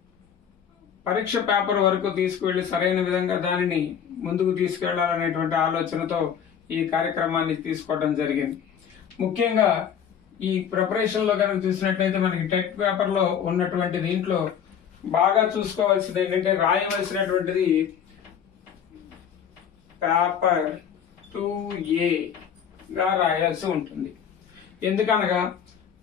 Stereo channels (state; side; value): quieter; right; 8.2 dB